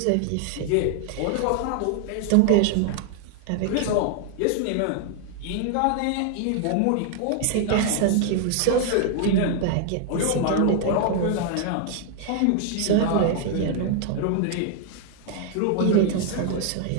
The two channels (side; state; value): both; different; correlation 0.00